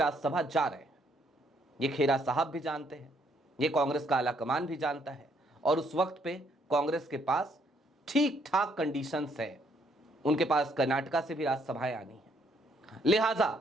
जा रहे हैं। ये खेरा साहब भी जानते हैं, ये कांग्रेस का आला कमान भी जानता है, और उस वक्त पे कांग्रेस के पास ठीक ठाक कंडीशंस है। उनके पास कर्नाटका से भी राज्यसभाएं आनी है। लिहाजा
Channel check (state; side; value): normal; both; correlation 0.69